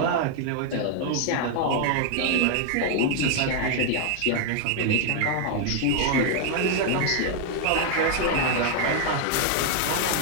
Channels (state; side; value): different; both; correlation 0.00